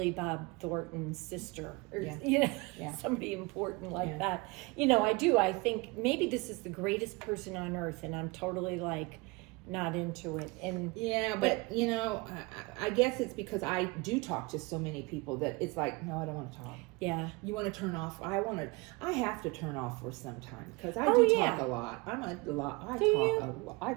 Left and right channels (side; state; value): left; quieter; 26.1 dB